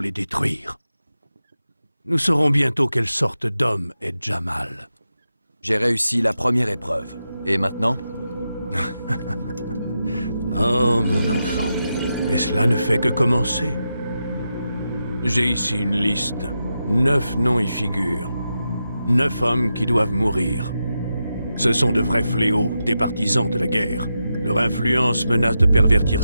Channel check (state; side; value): inverted; both; correlation -0.88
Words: les détruire. Nous saurons bientôt quelle sorte d'homme est Jamal. J'ai réussi la première épreuve. Et maintenant? Oh, mon enfant. Mais cela ne fait que commencer. J'ai ici une liste. 9 noms y figurent. 9 hommes qui doivent mourir. Ce sont de vrais fléaux, des partisans de la guerre. Leur influence menace de pervertir